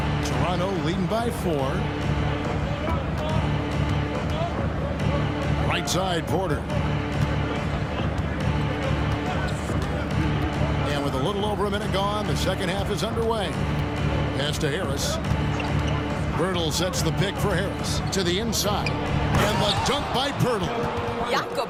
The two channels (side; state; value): both; identical; correlation 1.00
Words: Toronto leading by 4. Right side, Porter. And with a little over a minute gone, the second half is underway. Pass to Harris. Pirtle sets the pick for Harris. To the inside. And the dunk by Pirtle. Jakob